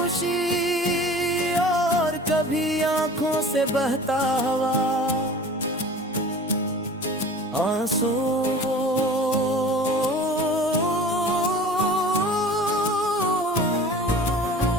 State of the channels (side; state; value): both; normal; correlation 0.42